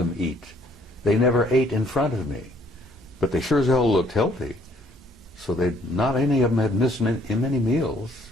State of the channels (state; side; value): normal; both; correlation 0.63